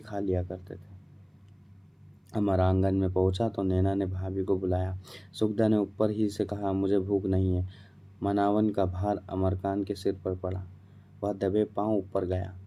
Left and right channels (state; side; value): identical; both; correlation 1.00